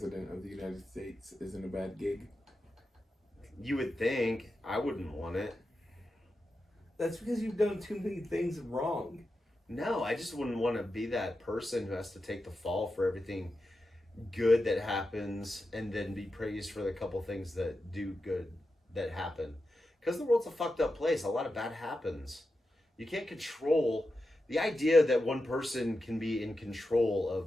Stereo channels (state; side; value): normal; both; correlation 0.90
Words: of the United States isn't a bad gig. You would think. I wouldn't want it. That's because you've done too many things wrong. No, I just wouldn't want to be that person who has to take the fall for everything good that happens and then be praised for the couple things that do good that happen. Because the world's a fucked up place. A lot of bad happens. You can't control the idea that one person can be in control